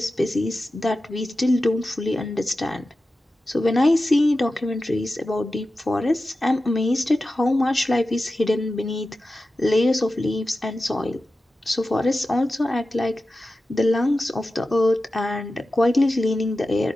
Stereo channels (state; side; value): normal; both; correlation 0.93